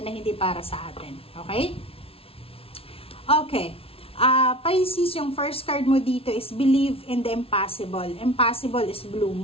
na hindi para sa atin. Okay? Okay. Pisces, yung first card mo dito is believe in the impossible. Impossible is blue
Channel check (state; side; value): late; right; 0.27 ms